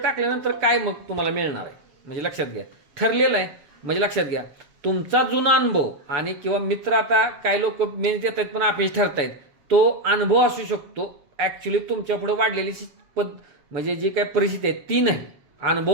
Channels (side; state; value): left; late; 7.0 ms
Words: काय मग तुम्हाला मिळणार आहे? म्हणजे लक्षात घ्या, ठरलेलं आहे. म्हणजे लक्षात घ्या, तुमचा जुना अनुभव आणि किंवा मित्र, आता काय लोक मेन्स देत आहेत पण अपयश ठरतायत, तो अनुभव असू शकतो. ॲक्च्युली तुमच्या पुढे वाढलेली म्हणजे जी काय परिस्थिती आहे ती नाही.